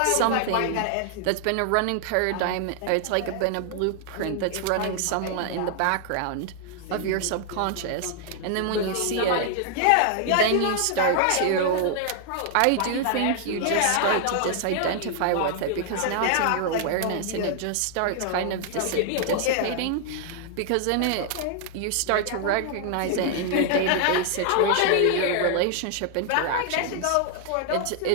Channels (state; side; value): different; both; correlation 0.00